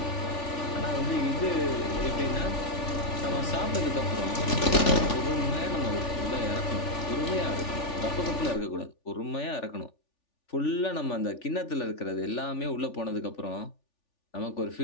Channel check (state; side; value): late; right; 3.4 ms